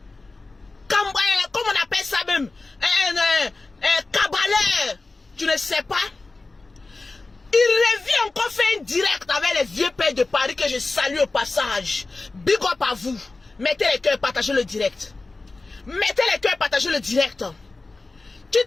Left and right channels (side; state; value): right; quieter; 3.5 dB